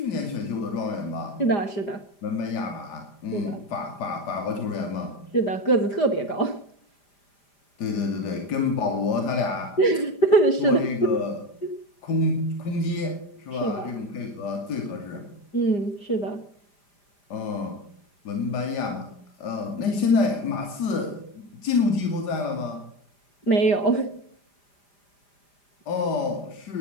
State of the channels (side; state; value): right; late; 5.0 ms